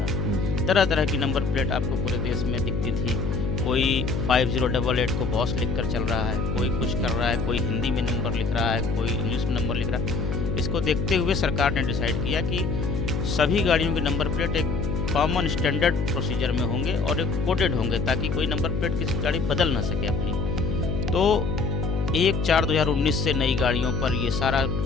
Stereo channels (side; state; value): left; noise; hum, 1 dB below the sound